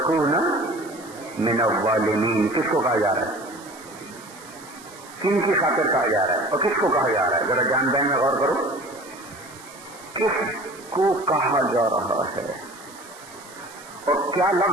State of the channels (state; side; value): noise; right; hiss, 20 dB below the sound